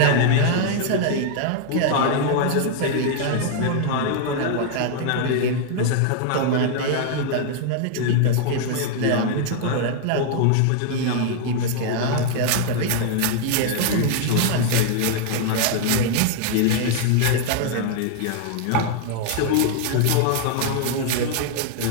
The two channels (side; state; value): both; different; correlation 0.00